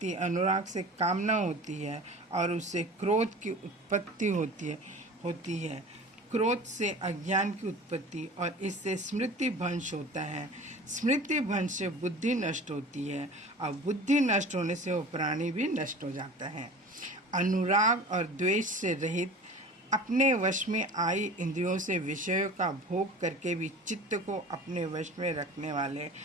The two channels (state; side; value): normal; both; correlation 0.39